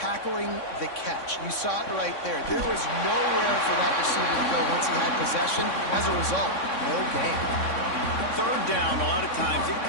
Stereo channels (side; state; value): right; late; 3.6 ms